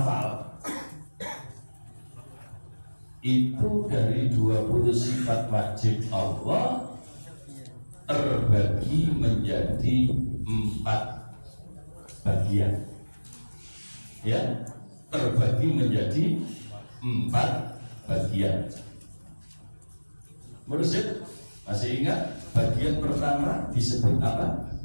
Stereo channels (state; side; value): inverted; both; correlation -1.00